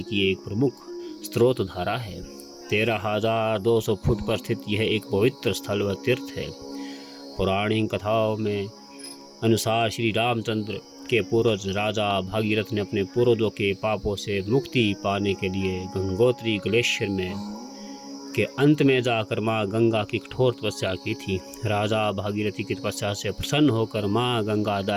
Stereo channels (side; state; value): both; identical; correlation 1.00